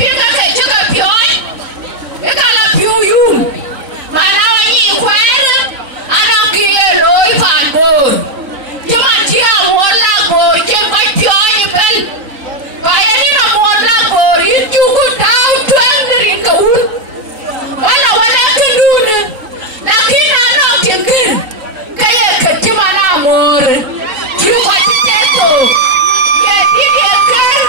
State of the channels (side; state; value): left; late; 3.9 ms